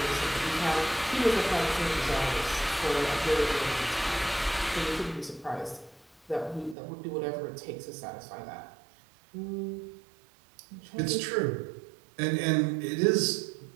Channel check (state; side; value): drops out; left; at 6.8 s